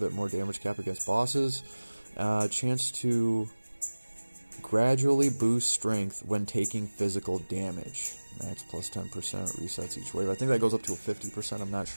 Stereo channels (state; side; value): inverted; both; correlation -1.00